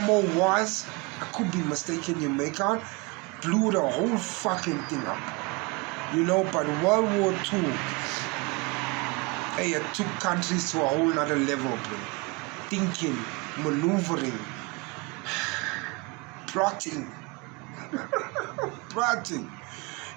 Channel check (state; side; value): quieter; left; 26.9 dB